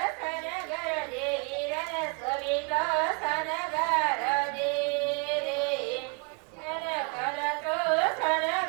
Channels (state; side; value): quieter; left; 31.5 dB